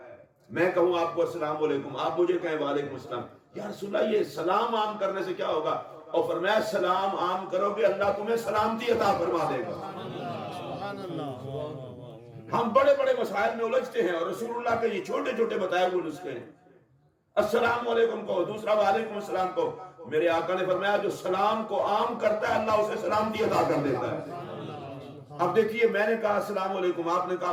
میں کہوں آپ کو السلام علیکم، آپ مجھے کہیں وعلیکم السلام. یا رسول اللہ یہ سلام عام کرنے سے کیا ہوگا؟ اور فرمایا سلام عام کرو گے اللہ تمہیں سلامتی عطا فرما دے گا. ہم بڑے بڑے مسائل میں الجھتے ہیں اور رسول اللہ کے یہ چھوٹے چھوٹے بتائے ہوئے نسخے ہیں. السلام علیکم کہو، دوسرا وعلیکم السلام کہو. میرے آقا نے فرمایا جو سلام کو عام کرتا ہے اللہ اسے سلامتی عطا کر دیتا ہے. اب دیکھیے میں نے کہا السلام علیکم، آپ نے کہا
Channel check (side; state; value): both; identical; correlation 1.00